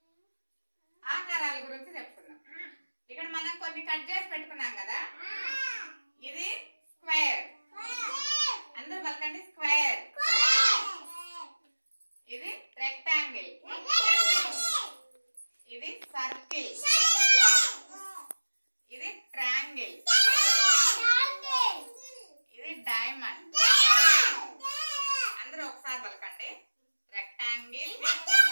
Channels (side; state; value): both; inverted; correlation -1.00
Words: ఆకారాల గురించి చెప్పుకుందాం. ఇక్కడ మనం కొన్ని కట్ చేసి పెట్టుకున్నాం కదా. ఇది స్క్వేర్, అందరూ పలకండి స్క్వేర్. ఇది రెక్టాంగిల్, ఇది సర్కిల్, ఇది ట్రయాంగిల్, ఇది డైమండ్. అందరూ ఒకసారి పలకండి rectangle,